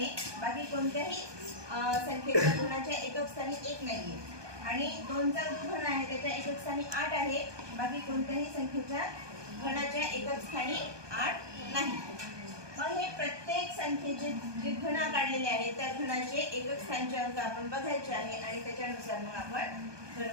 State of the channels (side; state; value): left; late; 1.2 ms